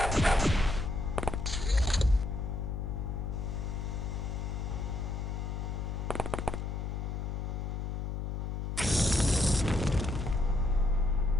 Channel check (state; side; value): noise; left; hum, 3 dB below the sound